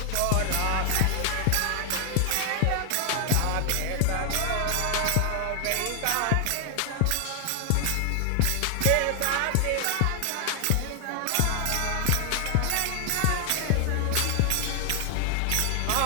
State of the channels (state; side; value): different; both; correlation 0.00